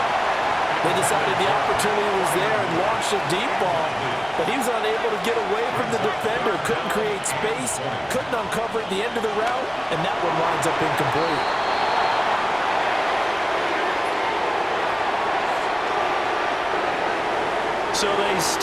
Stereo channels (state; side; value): identical; both; correlation 1.00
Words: They decided the opportunity was there and launched a deep ball, but he was unable to get away from the defender, couldn't create space, couldn't uncover at the end of the route, and that one winds up incomplete. So they